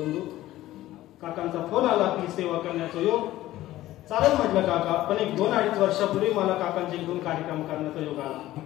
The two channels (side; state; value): right; quieter; 15.3 dB